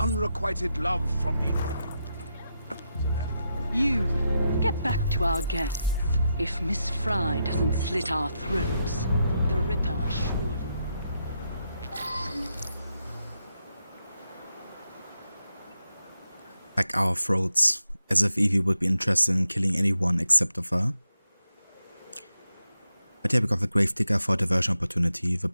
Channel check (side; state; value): both; inverted; correlation -0.85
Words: love from the army. You, get back to our guests. If Miss Fry doesn't slit our throats, the Ripper surely... Like our throats, as if Evie would be interested in killing anyone except of her. But yeah, we got the Gravedigger for diversion opportunity, the